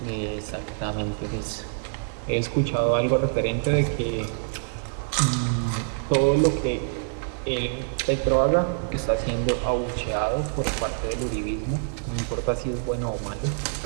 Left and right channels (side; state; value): left; silent; digital silence